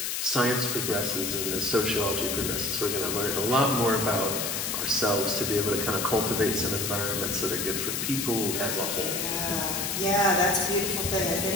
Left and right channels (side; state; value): left; noise; hiss, 1 dB below the sound